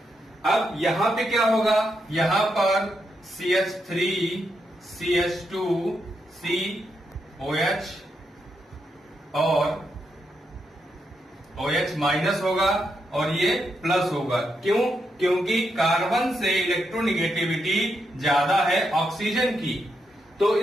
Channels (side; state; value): both; normal; correlation 0.82